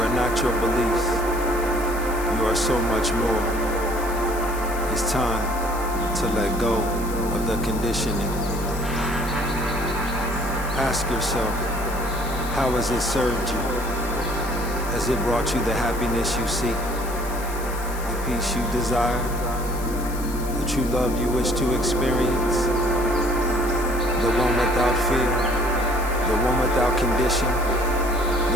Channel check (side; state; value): left; noise; hiss, 14 dB below the sound